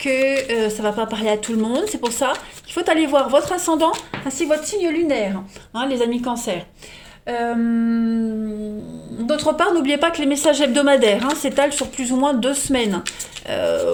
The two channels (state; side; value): identical; both; correlation 1.00